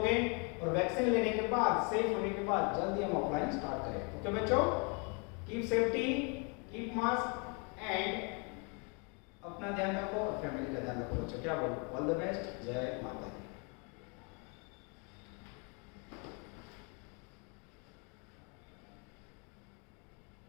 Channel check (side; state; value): right; quieter; 34.3 dB